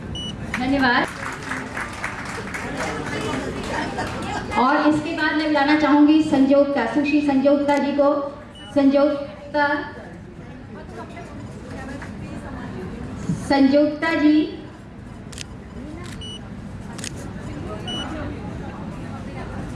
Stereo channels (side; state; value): both; identical; correlation 1.00